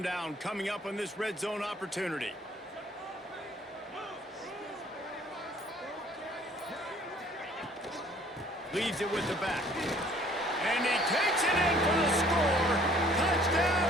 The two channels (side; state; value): both; normal; correlation 0.57